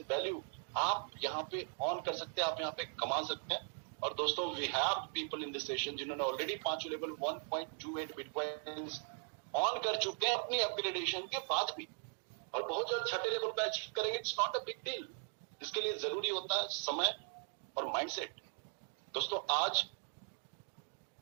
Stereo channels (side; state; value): left; silent; 52 dB below the other